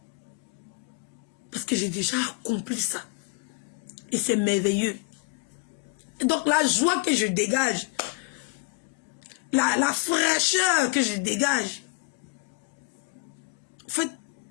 Parce que j'ai déjà accompli ça. Et c'est merveilleux. Et donc la joie que je dégage, la fraîcheur que je dégage, en fait,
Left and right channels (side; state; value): right; quieter; 25.5 dB